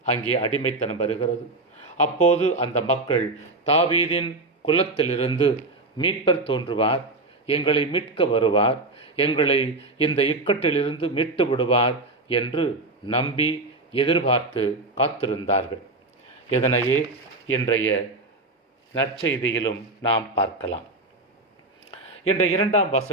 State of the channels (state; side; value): quieter; left; 3.0 dB